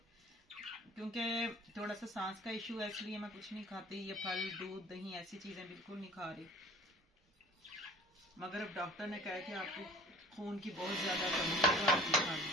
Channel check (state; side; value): normal; both; correlation 0.47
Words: क्योंकि थोड़ा सा सांस का इशू है, इसलिए मैं कुछ नहीं खाती। ये फल दूध दही ऐसी चीजें बिल्कुल नहीं खा रही। मगर अब डॉक्टर ने कहा कि आपको खून की बहुत ज्यादा कमी है।